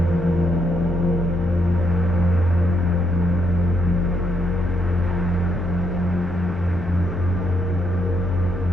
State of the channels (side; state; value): both; normal; correlation 0.76